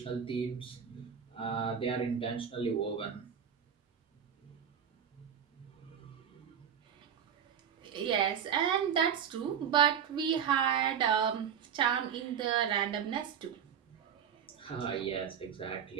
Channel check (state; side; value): quieter; left; 8.1 dB